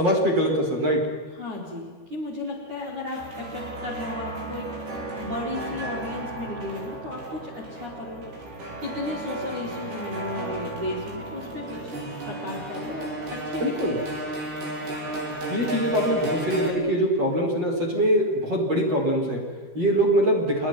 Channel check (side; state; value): left; late; 12 ms